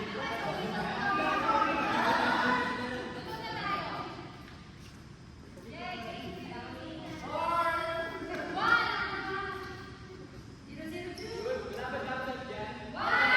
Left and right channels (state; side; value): identical; both; correlation 1.00